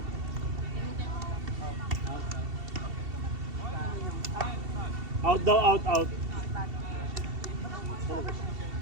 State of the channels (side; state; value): left; late; 2.7 ms